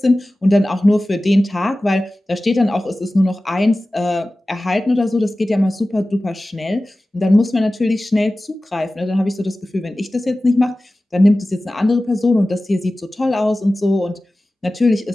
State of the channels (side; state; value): both; normal; correlation 0.96